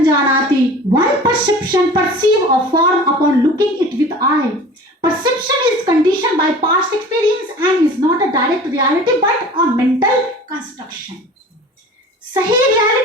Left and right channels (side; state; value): both; normal; correlation 0.41